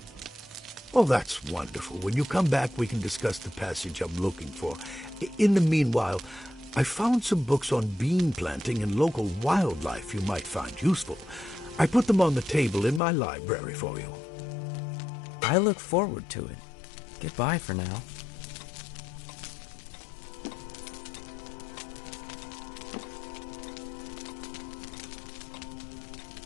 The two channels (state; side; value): drops out; right; at 13.0 s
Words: Oh, that's wonderful. When you come back, we can discuss the passage I'm looking for. In the meanwhile, I found some books on bean planting and local wildlife you might find useful. I put them on the table in my library for you. I look forward to it. Goodbye for now.